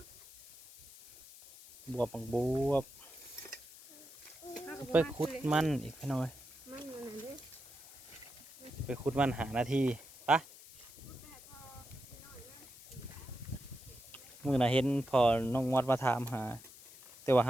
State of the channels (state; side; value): noise; left; hiss, 19 dB below the sound